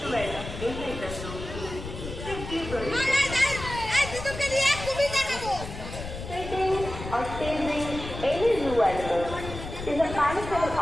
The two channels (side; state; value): left; noise; rumble, 9 dB below the sound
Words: inside the room. Sitting or staging any zoo animal is a punishable